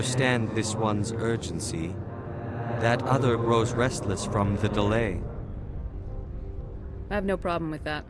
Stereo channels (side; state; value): both; identical; correlation 1.00